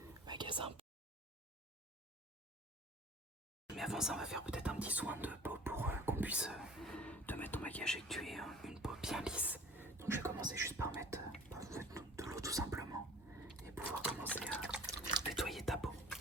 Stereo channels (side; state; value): both; normal; correlation 0.47